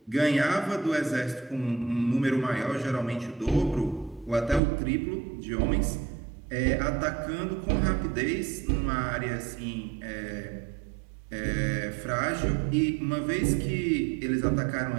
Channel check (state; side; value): drops out; left; at 4.6 s